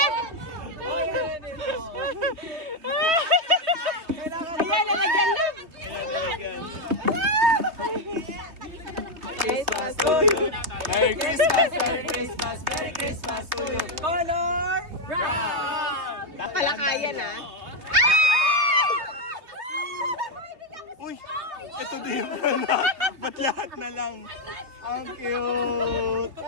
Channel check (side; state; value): left; late; 3.2 ms